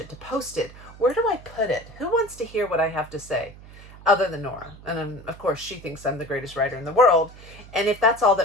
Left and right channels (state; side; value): noise; right; hum, 19 dB below the sound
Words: to post it. Where do I put it? Who wants to hear what I have to say? Other than Nora. And of course, she thinks I'm the greatest writer in the world. And if that's all